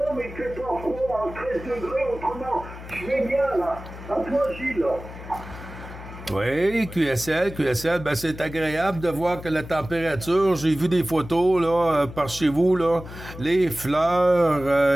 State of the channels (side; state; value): left; noise; hum, 13 dB below the sound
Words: mais il fait pas froid, à 13 degrés, autrement, je vais bien là. À toi, Gilles. Oui, QSL, ben c'est agréable de voir que la température, j'ai vu des photos là par chez vous là, les